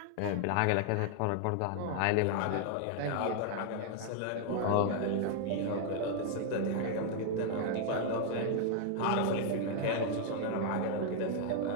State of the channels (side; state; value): both; different; correlation 0.00